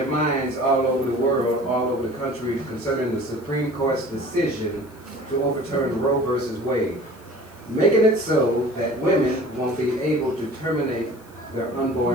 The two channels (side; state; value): left; noise; hiss, 27 dB below the sound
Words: minds all over the world, all over the country, concerning the Supreme Court's decision to overturn Roe versus Wade, making it so that women won't be able to terminate their